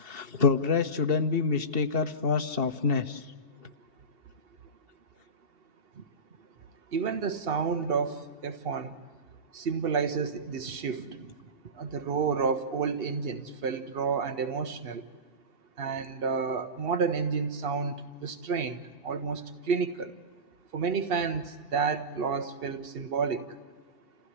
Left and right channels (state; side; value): late; left; 2.7 ms